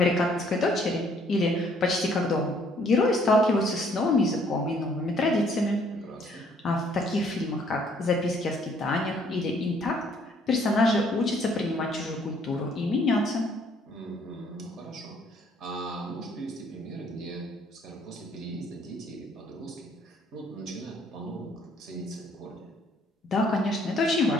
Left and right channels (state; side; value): normal; both; correlation 0.63